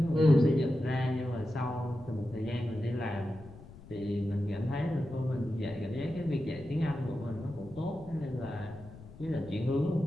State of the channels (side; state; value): left; noise; rumble, 18 dB below the sound